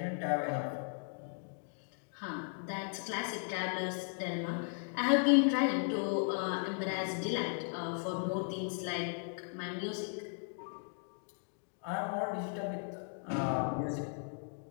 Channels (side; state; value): right; silent; 53 dB below the other